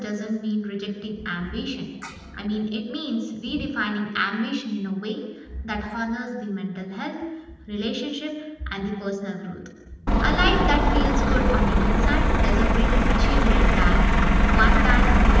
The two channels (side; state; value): both; identical; correlation 1.00